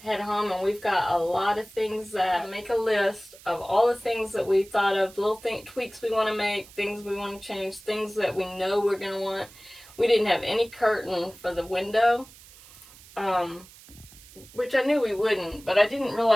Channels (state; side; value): noise; right; hiss, 21 dB below the sound